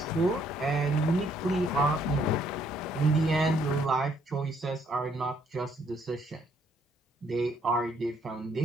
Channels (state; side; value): normal; both; correlation 0.67